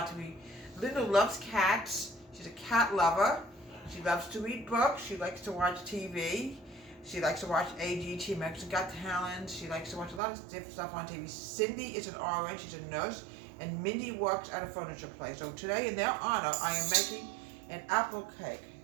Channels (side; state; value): left; drops out; at 10.2 s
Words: to me. Linda loves cats. She's a cat lover. She loves to read books. She likes to watch TV. She likes to watch AGT, America's Got Talent. She likes to watch a lot of different stuff on TV. Cindy is an RN, she's a nurse, and Mindy works at a furniture place. So today, in their honor, I am making an apple